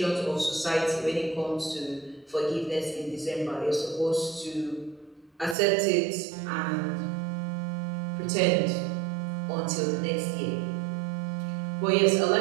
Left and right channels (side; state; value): left; drops out; at 5.6 s